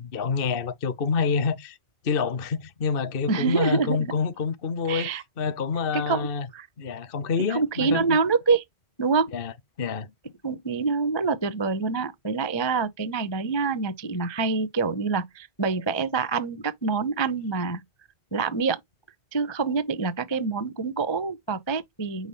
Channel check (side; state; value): right; late; 1.3 ms